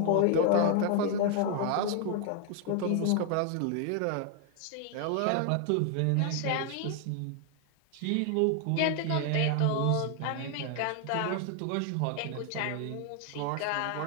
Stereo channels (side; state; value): both; different; correlation 0.00